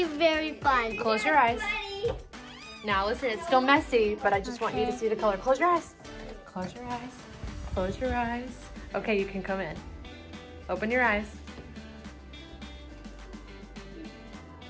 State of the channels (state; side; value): identical; both; correlation 1.00